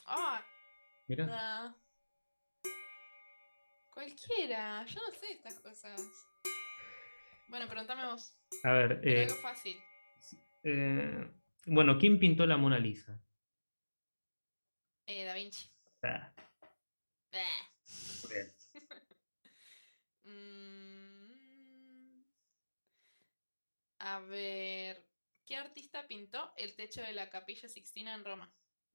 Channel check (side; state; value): both; inverted; correlation -1.00